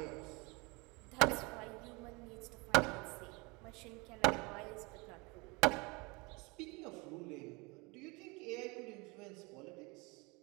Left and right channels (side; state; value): left; quieter; 27.0 dB